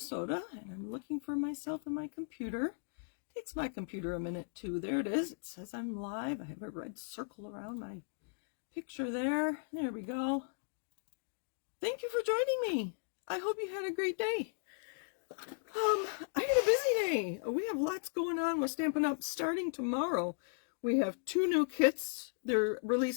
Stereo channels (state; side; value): silent; right; digital silence